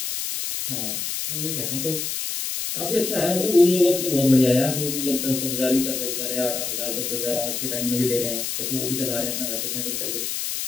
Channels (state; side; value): noise; left; hiss, 3 dB below the sound